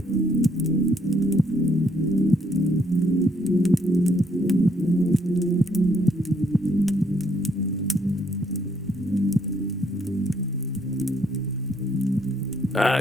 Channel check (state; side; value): normal; both; correlation 0.69